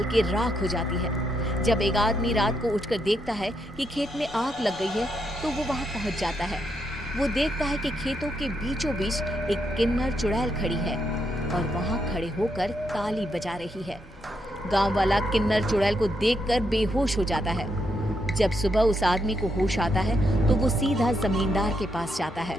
के राख हो जाती है। जब एक आदमी रात को उठकर देखता है कि खेत में आग लग गई है तो वो वहां पहुंच जाता है। वो देखता है कि खेतों के बीचों बीच एक किन्नर चुड़ैल खड़ी है और वहां खड़े होकर ताली बजा रही है। गांव वाला किन्नर चुड़ैल को देखकर बेहोश हो जाता है। जब सुबह उस आदमी को होश आता है तो वो सीधा जमींदार के पास जाता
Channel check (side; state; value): both; normal; correlation 0.79